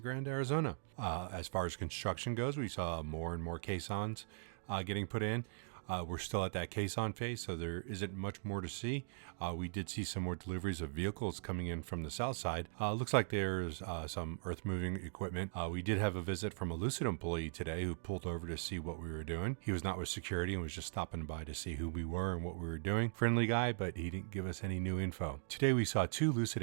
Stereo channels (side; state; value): left; silent; digital silence